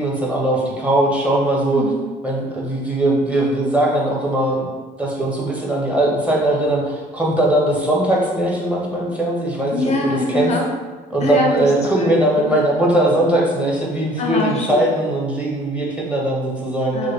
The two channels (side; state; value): both; normal; correlation 0.56